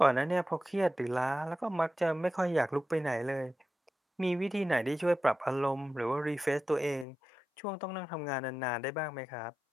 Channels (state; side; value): drops out; right; at 7.1 s